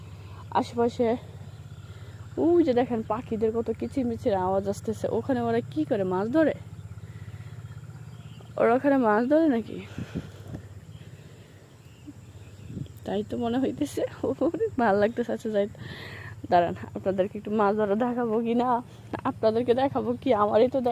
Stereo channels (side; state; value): both; identical; correlation 1.00